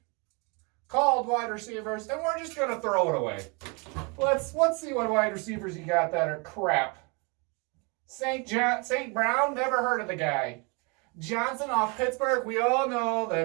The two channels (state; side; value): quieter; left; 31.1 dB